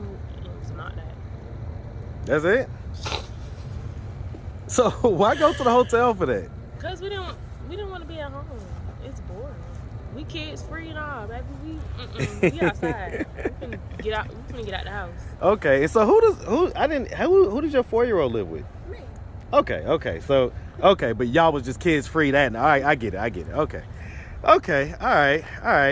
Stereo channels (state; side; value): identical; both; correlation 1.00